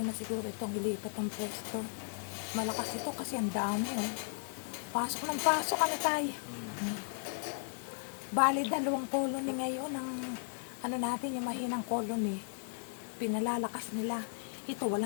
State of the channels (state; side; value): silent; right; 54 dB below the other